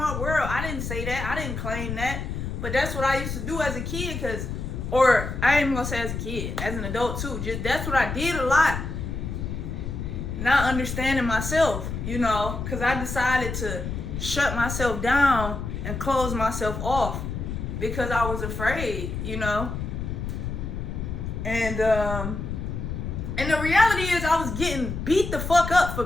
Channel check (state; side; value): noise; left; rumble, 5 dB below the sound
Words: world. I didn't say that. I didn't claim that. But that's what I used to do as a kid, or I ain't even gonna say as a kid, as an adult too. Just that's what I did a lot. Not understanding myself, you know, because I decided to shut myself down and close myself off because I was afraid, you know. And the reality is I was getting beat the fuck up for